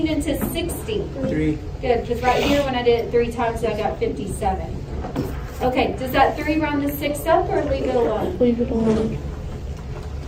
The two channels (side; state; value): both; identical; correlation 1.00